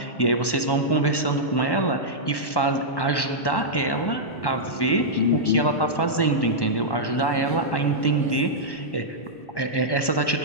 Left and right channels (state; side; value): late; right; 1.1 ms